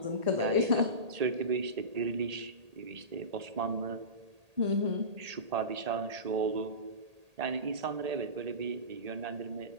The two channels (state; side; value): late; left; 1.8 ms